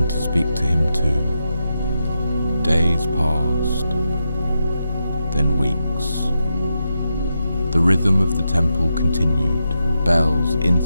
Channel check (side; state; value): both; inverted; correlation -0.86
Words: to speak to him too. Days passed, then weeks. The rhythm of the temple continued, bells,